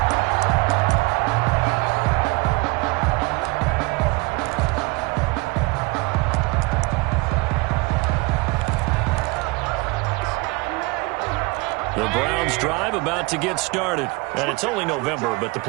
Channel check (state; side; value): quieter; left; 25.4 dB